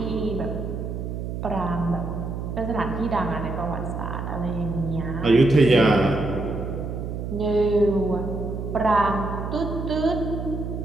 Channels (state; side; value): noise; right; hum, 5 dB below the sound